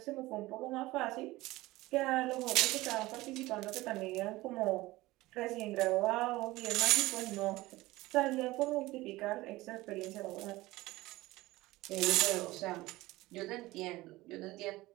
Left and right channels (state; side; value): quieter; left; 19.0 dB